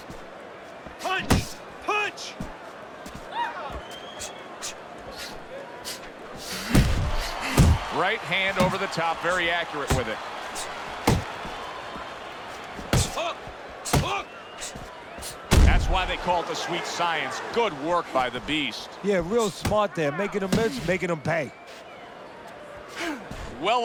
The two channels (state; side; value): identical; both; correlation 1.00